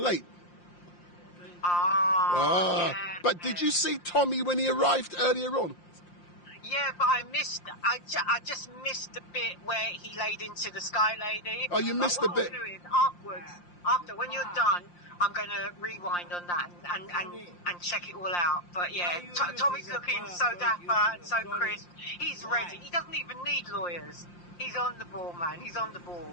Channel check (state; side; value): late; right; 5.7 ms